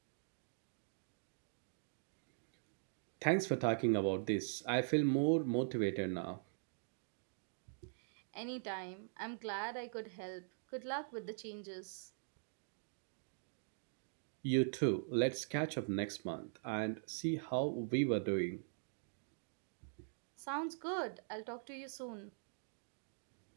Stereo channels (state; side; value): silent; left; digital silence